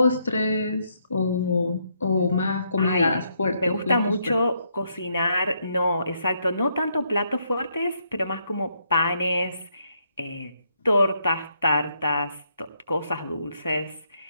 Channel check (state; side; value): inverted; both; correlation -0.75